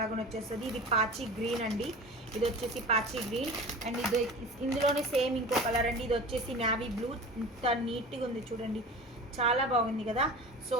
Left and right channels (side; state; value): both; normal; correlation 0.36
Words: లాగా వచ్చేస్తుంది. ఇది పాచి గ్రీన్ అండి, ఇది వచ్చేసి పాచి గ్రీన్. అండ్ ఇది ఇందులోనే సేమ్ ఇంకో కలర్ అండి, ఇది వచ్చేసి నావీ బ్లూ. ఇంత నీట్గా ఉంది చూడండి, చాలా బాగుంది కదా. సో